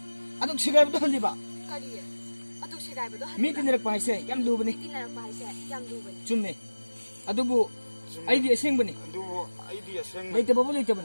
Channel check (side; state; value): both; inverted; correlation -1.00